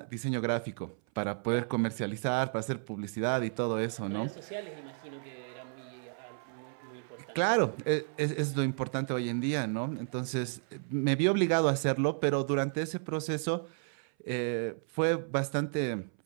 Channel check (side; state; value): left; silent; 56 dB below the other